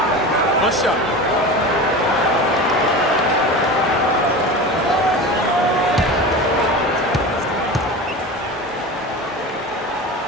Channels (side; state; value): both; normal; correlation 0.30